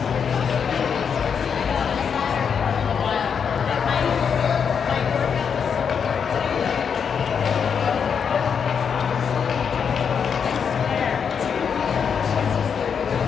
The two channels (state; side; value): quieter; right; 6.8 dB